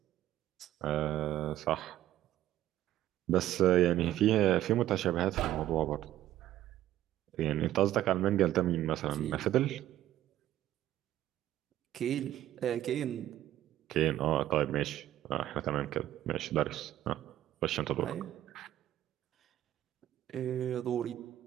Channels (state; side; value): quieter; left; 13.1 dB